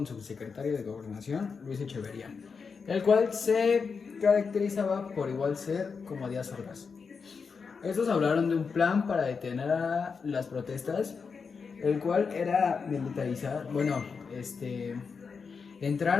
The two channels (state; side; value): quieter; right; 5.4 dB